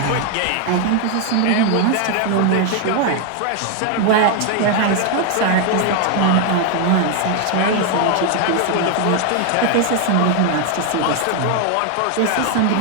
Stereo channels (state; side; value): different; both; correlation 0.00